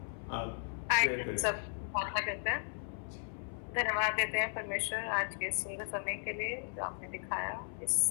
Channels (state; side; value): silent; right; 54 dB below the other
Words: आप सब प्रार्थना करते हैं। धन्यवाद देते हैं परमेश्वर आज के सुंदर समय के लिए जो आपने दिखाया। इस